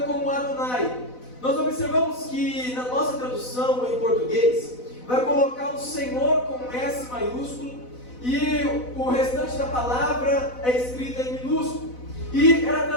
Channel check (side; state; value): right; late; 4.0 ms